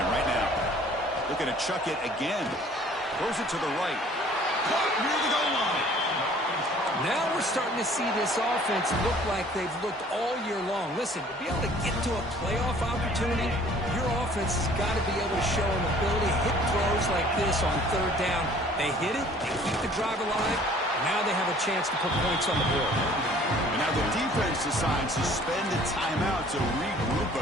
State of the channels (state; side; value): normal; both; correlation 0.53